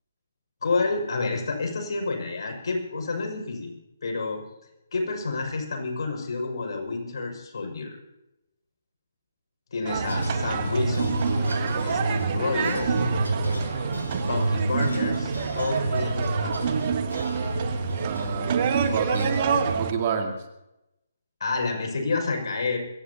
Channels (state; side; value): inverted; both; correlation -0.76